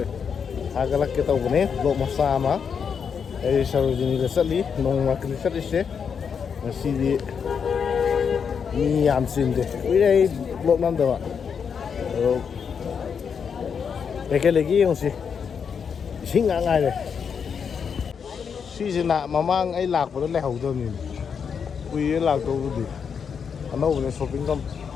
agalak kita ubne vlog masama ai Sarojini gasali nong market sali se sidi ni am sinde wi ai vlog nam dawa ekelegi yongsi singa ngai le sisina mamang ai lak pa le hau do ni wi lak do bu ano udah shopping kan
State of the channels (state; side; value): quieter; right; 6.7 dB